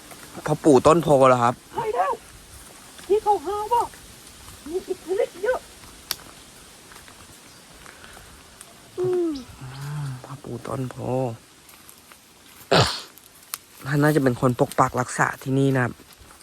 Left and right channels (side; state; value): both; identical; correlation 1.00